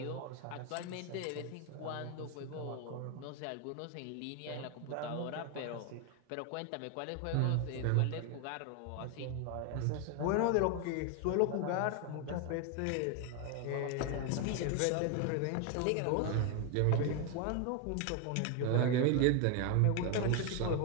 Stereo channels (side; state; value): both; different; correlation 0.01